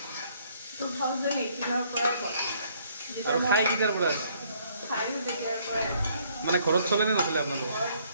2018 পৰা আৰু খাই কেতিয়াৰ পৰা আছে? মানে ঘৰত চলে নে নচলে আপোনালোকৰ?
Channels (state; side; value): inverted; both; correlation -0.65